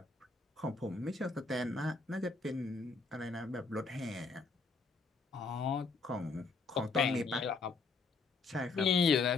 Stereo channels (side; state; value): right; quieter; 4.2 dB